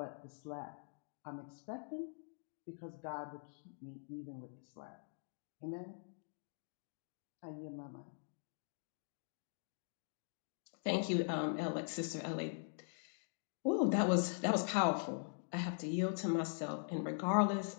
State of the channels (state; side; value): silent; right; digital silence